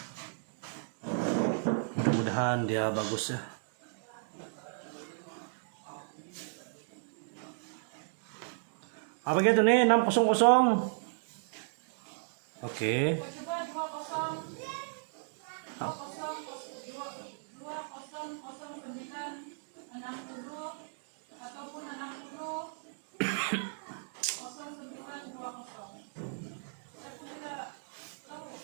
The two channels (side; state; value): left; silent; digital silence